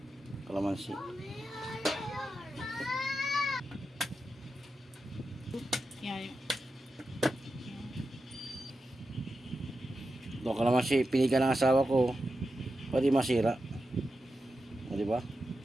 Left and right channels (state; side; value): normal; both; correlation 0.90